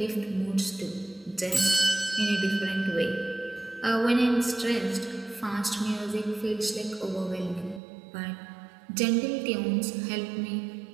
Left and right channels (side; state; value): left; drops out; at 7.8 s